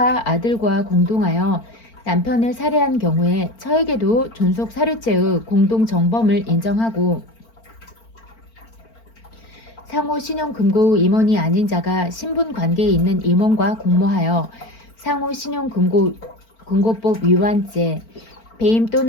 아들과 공동하여 남편을 살해한 경우에 처에게도 존속 살해죄의 공동 정범을 인정하고 상호 신용금고의 임원이 아닌 자가 신분관계에 있는 임원과 공모하여 상호 신용금고법 위반죄, 배임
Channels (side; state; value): right; late; 4.4 ms